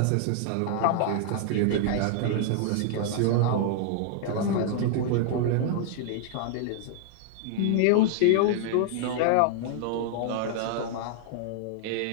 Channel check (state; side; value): different; both; correlation 0.00